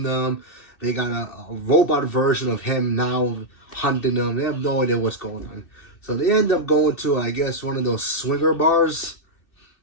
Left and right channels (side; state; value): right; late; 2.6 ms